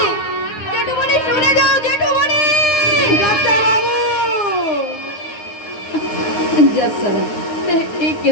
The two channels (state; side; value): late; right; 9.5 ms